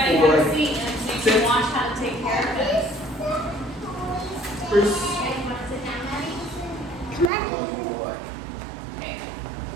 have a seat and so you can watch how to take care of this. Bruce. Come on. Okay.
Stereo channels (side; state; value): left; drops out; at 7.3 s